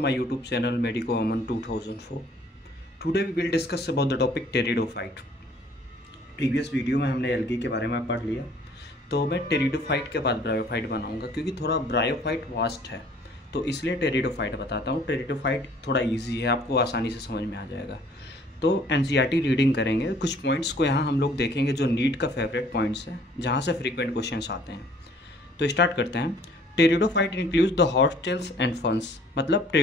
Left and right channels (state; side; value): normal; both; correlation 0.57